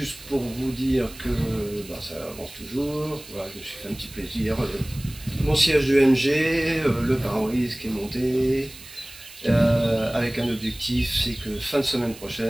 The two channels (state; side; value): noise; right; hiss, 18 dB below the sound